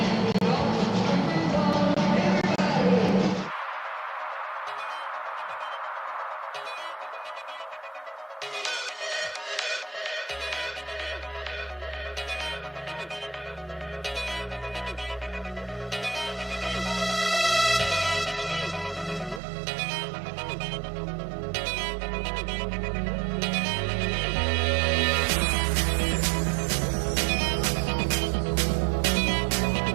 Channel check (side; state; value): left; drops out; at 19.4 s